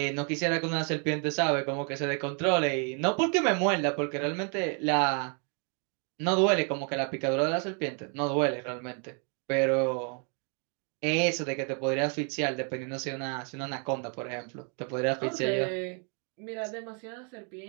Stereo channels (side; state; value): left; quieter; 39.6 dB